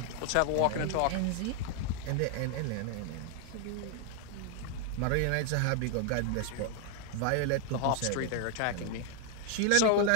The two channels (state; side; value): different; both; correlation 0.00